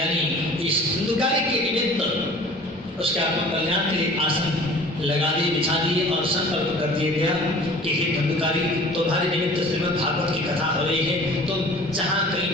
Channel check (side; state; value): both; normal; correlation 0.46